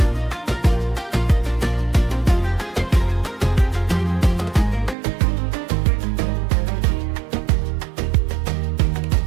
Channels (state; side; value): drops out; left; at 5.0 s